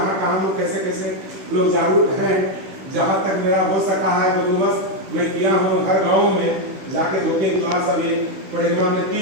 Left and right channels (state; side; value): late; left; 16 ms